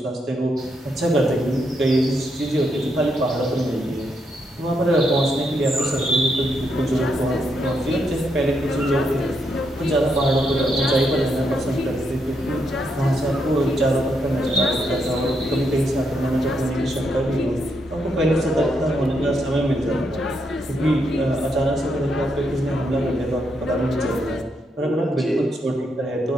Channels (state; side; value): normal; both; correlation 0.79